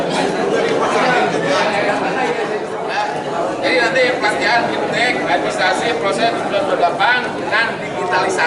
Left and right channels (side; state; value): both; identical; correlation 1.00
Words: jadi nanti pelatihan fintech, administrasi, proses 98 dan